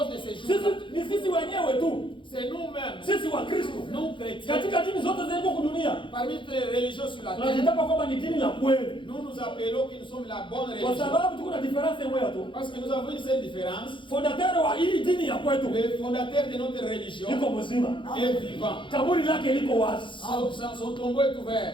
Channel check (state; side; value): late; right; 0.24 ms